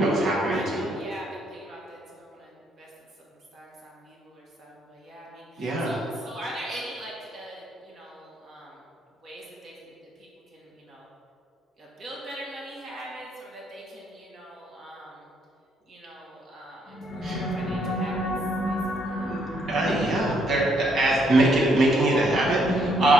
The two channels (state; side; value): normal; both; correlation 0.71